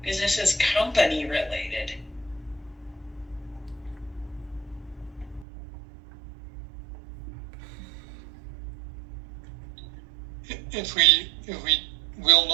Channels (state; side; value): drops out; left; at 5.5 s